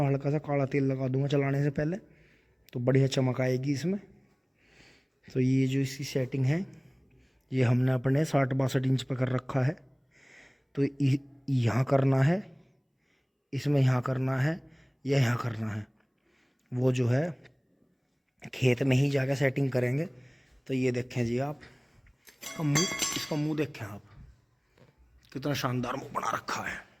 हल्का सा काला तेल लगा दूंगा चलाने से पहले, तो बढ़िया चमक आएगी इसमें। तो ये जो इसकी सेटिंग है ये हमने अपने 60-62 इंच पर कर रखा है। तो यहाँ करना है, इसमें यहाँ करना है या यहाँ करना है, वो जो है खेत में ही जाकर सेटिंग करेंगे। तो ये देखें जी आप, इसका मुंह देखें आप, कितना शानदार मुंह बना रखा है।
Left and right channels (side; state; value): both; identical; correlation 1.00